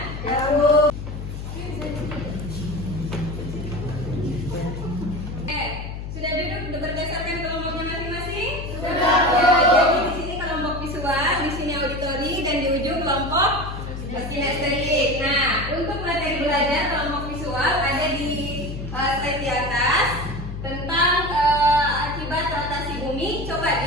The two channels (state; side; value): noise; left; hum, 7 dB below the sound